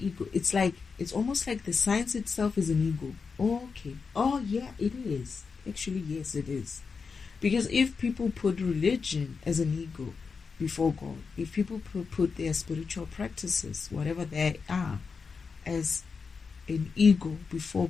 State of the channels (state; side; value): quieter; right; 5.2 dB